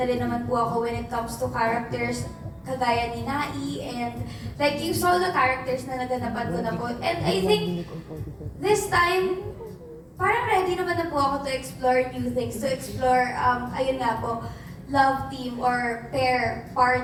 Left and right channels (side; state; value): both; identical; correlation 1.00